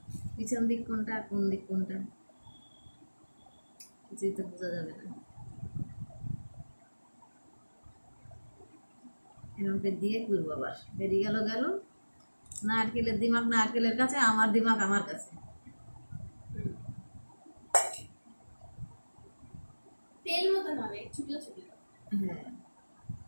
পিছন দিক কোনটা আর কোন দিক কোনটা কিছুই তো বোঝা যাবে না। এরকম করে দিয়ে করবো, আবার বেরিয়ে গেল গেল। নারকেলের দিমাগ নারকেলের কাছে, আমার দিমাগ আমার কাছে। তেল মতন হবে ছোট ছোট, হ্যাঁ,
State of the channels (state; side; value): inverted; both; correlation -1.00